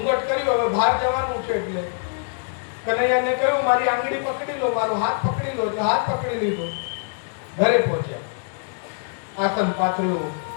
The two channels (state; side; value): silent; right; digital silence